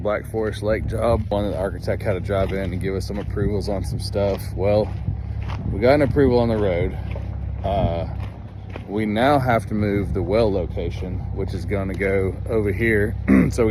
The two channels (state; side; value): identical; both; correlation 1.00